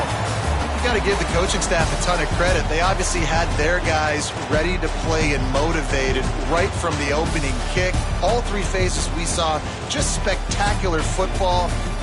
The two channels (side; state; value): both; identical; correlation 1.00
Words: Got to give the coaching staff a ton of credit. They obviously had their guys ready to play and motivated right from the opening kick. All 3 phases we saw, just spectacular football.